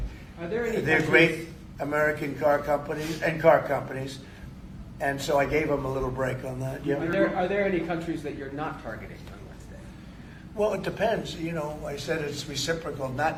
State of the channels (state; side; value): identical; both; correlation 1.00